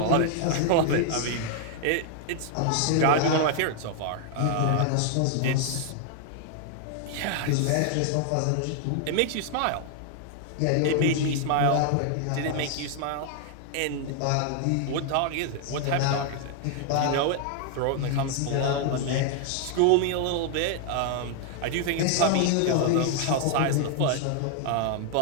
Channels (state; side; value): different; both; correlation 0.00